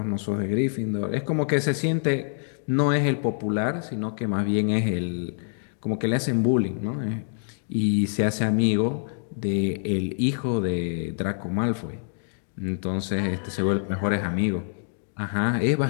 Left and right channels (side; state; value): right; silent; digital silence